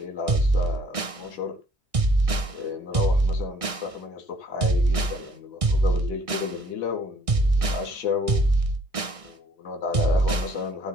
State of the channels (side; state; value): left; late; 1.6 ms